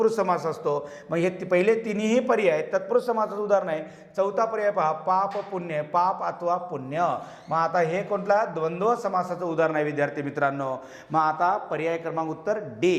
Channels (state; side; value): identical; both; correlation 1.00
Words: समास असतो. मग हे पहिले तिन्ही पर्याय तत्पुरुष समासाचं उदाहरण आहे. चौथा पर्याय पहा, पाप पुण्य, पाप अथवा पुण्य. मग आता हे कोणता? द्वंद्व समासाचं उदाहरण आहे विद्यार्थी मित्रांनो. मग आता पर्याय क्रमांक उत्तर